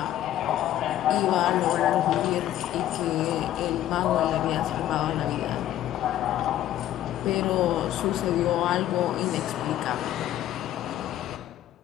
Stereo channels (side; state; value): right; quieter; 12.6 dB